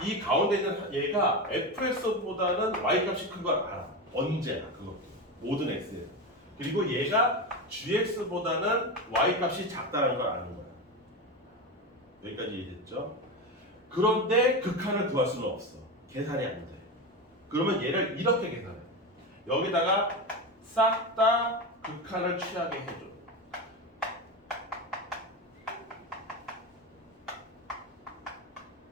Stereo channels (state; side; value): normal; both; correlation 0.19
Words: 이 가운데 있는 얘가 fx보다는 y 값이 큰 걸 알아. 언제나 그것도 모든 x에. 그리고 얘가 gx보다는 y 값이 작다는 걸 아는 거야. 여기까지 이해됐죠? 그런데 극한을 구할 수는 없어. 계산이 안 돼. 그러면 얘를 이렇게 계산해. 여기다가 싹 다 극한을 취하게 해줘.